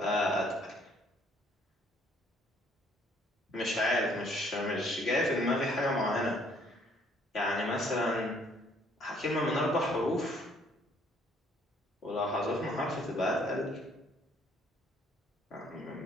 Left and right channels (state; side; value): normal; both; correlation 0.63